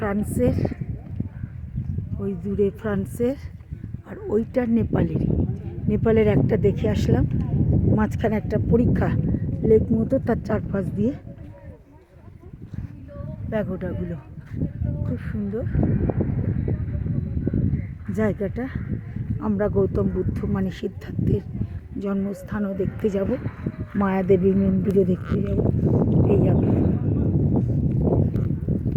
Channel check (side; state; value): both; identical; correlation 1.00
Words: ওই দূরে ফ্রান্সের, আর ওইটা নেপালের একটা দেখে আসলাম। মাঝখানে একটা পরীক্ষা লেক মতো, তার চারপাশ দিয়ে প্যাগোডাগুলো খুব সুন্দর জায়গাটা। আমরা গৌতম বুদ্ধ মানে সিদ্ধার্থের জন্মস্থানও দেখতে যাব, মায়াদেবী মন্দিরও দেখতে যাব। এই যাবে